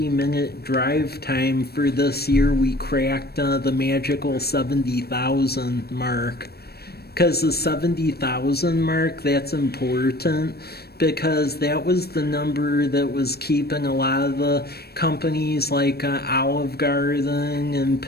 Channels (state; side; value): late; right; 0.46 ms